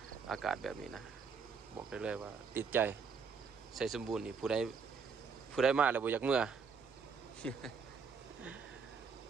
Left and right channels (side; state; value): left; quieter; 5.6 dB